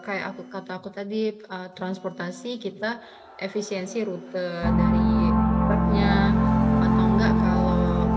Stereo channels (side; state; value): both; identical; correlation 1.00